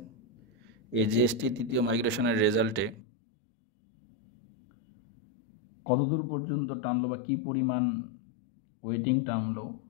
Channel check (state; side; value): drops out; right; at 3.0 s